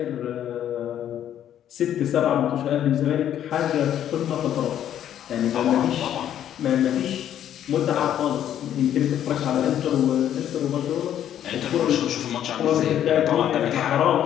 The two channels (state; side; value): quieter; right; 10.6 dB